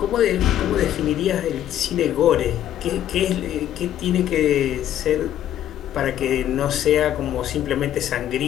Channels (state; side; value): quieter; right; 11.4 dB